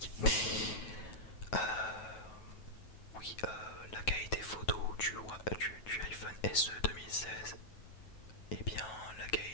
Oui, la qualité photo du iPhone SE 2016, et bien la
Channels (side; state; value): right; late; 9.3 ms